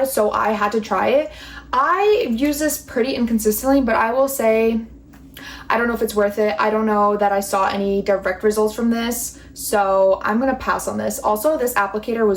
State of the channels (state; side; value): identical; both; correlation 1.00